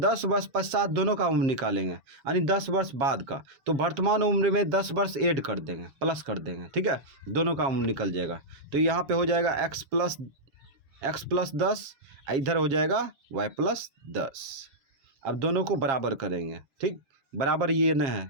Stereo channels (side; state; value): left; late; 7.4 ms